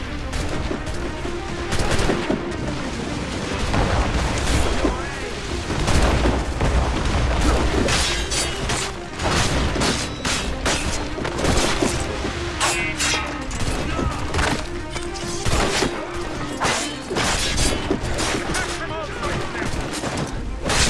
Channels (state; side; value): identical; both; correlation 1.00